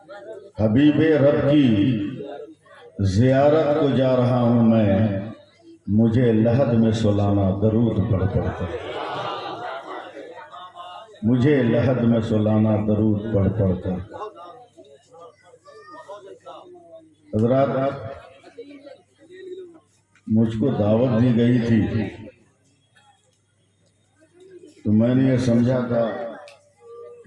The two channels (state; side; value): identical; both; correlation 1.00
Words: حبیب رب کی زیارت کو جا رہا ہوں میں، مجھے لحد میں سلانا درود پڑھ پڑھ کر، مجھے لحد میں سلانا درود پڑھ پڑھ کر۔ حضرات، مجھ کو دعوت دی گئی تھی تو میں نے یہ سمجھا تھا